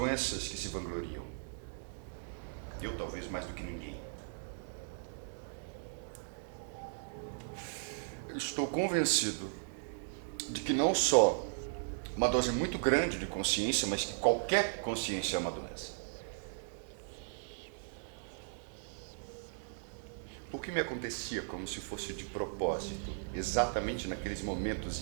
que se vangloriam. Eu talvez mais do que ninguém. Estou convencido de que não só uma dose muito grande de consciência, mas que qualquer consciência é uma doença. O que me acontecia como se fosse de propósito, exatamente naqueles momentos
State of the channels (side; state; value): left; silent; 53 dB below the other